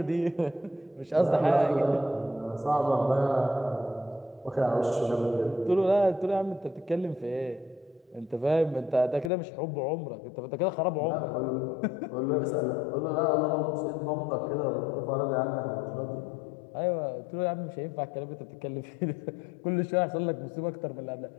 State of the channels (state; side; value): drops out; right; at 9.3 s